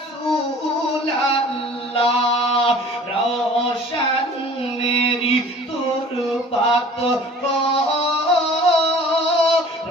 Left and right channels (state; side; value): normal; both; correlation 0.47